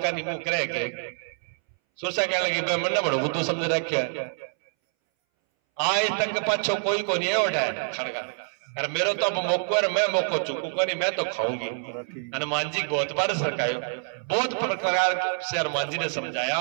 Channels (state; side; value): silent; left; 60 dB below the other